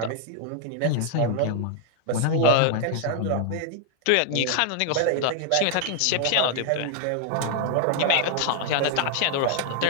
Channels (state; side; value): different; both; correlation 0.00